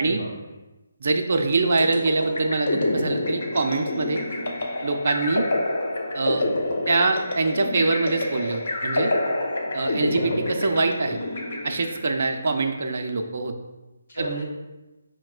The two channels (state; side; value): inverted; both; correlation -0.85